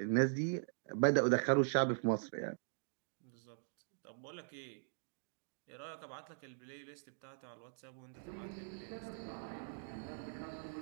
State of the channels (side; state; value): left; silent; digital silence